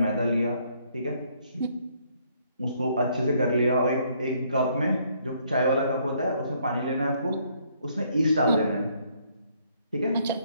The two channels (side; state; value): both; inverted; correlation -0.68